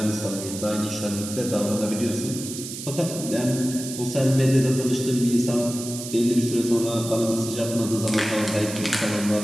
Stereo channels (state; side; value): noise; right; hiss, 9 dB below the sound